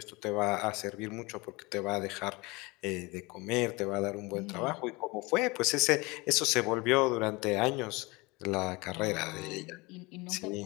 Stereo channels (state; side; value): quieter; right; 24.8 dB